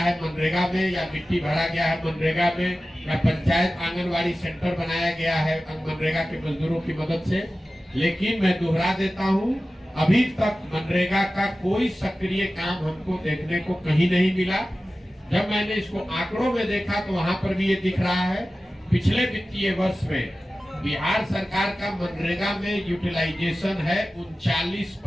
मनरेगा में, या मिट्टी भरा गया है मनरेगा में, या पंचायत आंगनवाड़ी सेंटर बनाया गया है मनरेगा के मजदूरों की मदद से। लेकिन मैं दोहरा देता हूँ, अभी तक मनरेगा का कोई सक्रिय काम हमको देखने को कहीं नहीं मिला। जब मैंने इसको आंकड़ों में देखा तो वहां पर भी ये दिख रहा है, पिछले वित्तीय वर्ष में बिहार सरकार का मनरेगा में यूटिलाइजेशन है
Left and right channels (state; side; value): normal; both; correlation 0.95